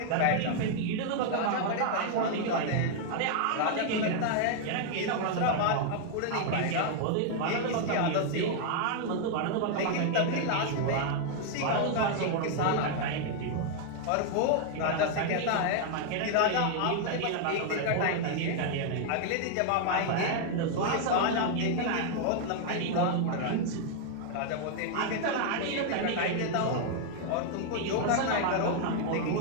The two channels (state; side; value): different; both; correlation 0.00